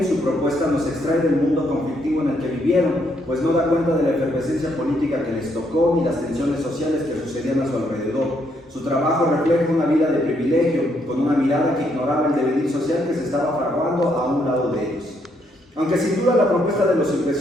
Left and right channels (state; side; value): normal; both; correlation 0.73